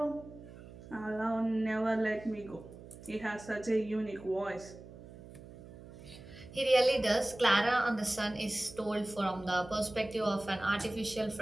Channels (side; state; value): right; noise; hum, 17 dB below the sound